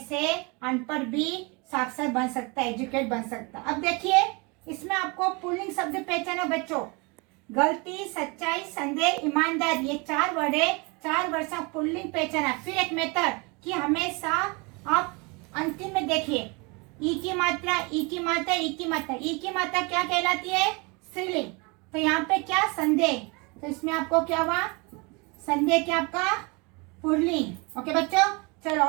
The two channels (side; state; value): left; quieter; 28.9 dB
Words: अनपढ़ भी साक्षर बन सकता है, एजुकेट बन सकता है। अब देखिए, इसमें आपको पुल्लिंग शब्द पहचाना बच्चों। गलती, सच्चाई, संदेह, ईमानदार, ये 4 वर्ड है। 4 वर्ड से पुल्लिंग पहचाना। फिर एक मेथड कि हमेशा आप अंतिम में देखिए, ई की मात्रा, ई की मात्रा, ई की मात्रा। ई की मात्रा क्या कहलाती है? स्त्रीलिंग। तो यहाँ पे क्या? संदेह, तो इसमें आपको क्या हुआ? संदेह क्या आपका? पुल्लिंग। ओके बच्चों, चलो